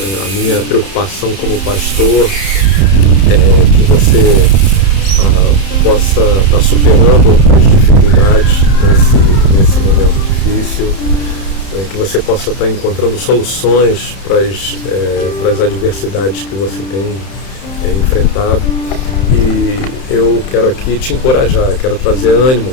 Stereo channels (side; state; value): right; late; 31 ms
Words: A minha preocupação como pastor é que você possa estar superando as dificuldades nesse momento difícil, que você possa estar encontrando soluções para as adversidades que você tem enfrentado. E eu quero aqui te encorajar, quero trazer ânimo